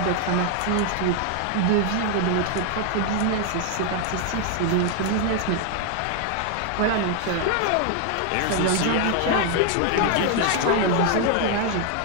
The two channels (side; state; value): both; different; correlation 0.00